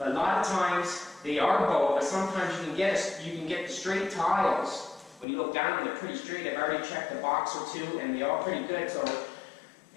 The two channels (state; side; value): drops out; right; at 5.2 s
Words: a lot of times they are bowed, but sometimes you can get the straight tiles. When you look down, they're pretty straight. I've already checked a box or two, and they're all pretty good. So,